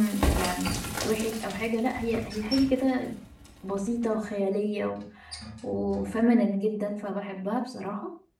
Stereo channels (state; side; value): identical; both; correlation 1.00